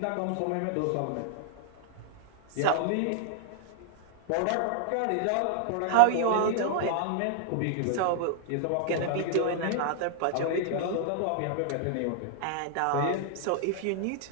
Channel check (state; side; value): different; both; correlation -0.01